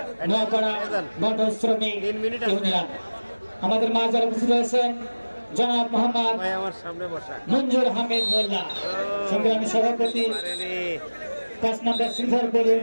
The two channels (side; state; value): both; inverted; correlation -1.00